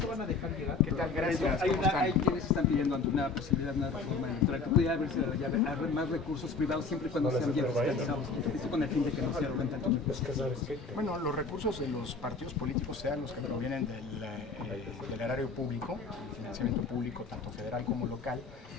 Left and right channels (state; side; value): quieter; right; 4.3 dB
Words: van a dejar llegar? ¿Qué tal? Gracias. Hay quienes están pidiendo ante una posibilidad de una reforma electoral que pudiera haber más recursos privados siempre y cuando sean bien fiscalizados. Esto con el fin de que no se arroguen tanto. Bueno, los recursos de los partidos políticos, sean los que provienen del erario público, financiamiento público, tanto federal como local,